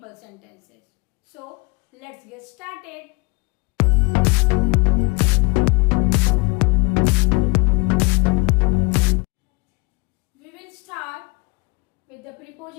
sentences. So let's get started. We will start with the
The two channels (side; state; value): right; quieter; 27.8 dB